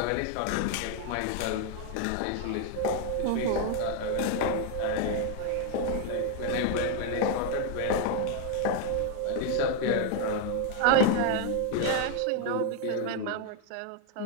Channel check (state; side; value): different; both; correlation 0.01